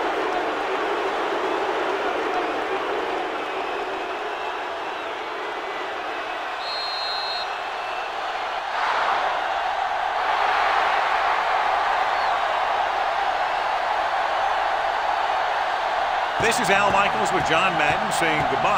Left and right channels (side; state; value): both; identical; correlation 1.00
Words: This is Al Michaels with John Madden saying